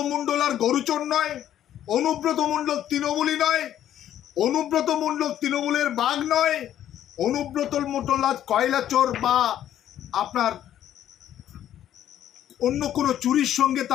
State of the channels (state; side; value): quieter; right; 11.3 dB